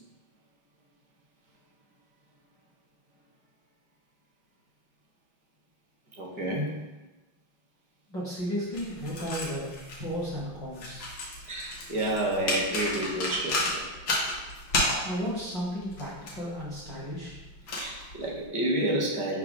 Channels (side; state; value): right; late; 5.9 ms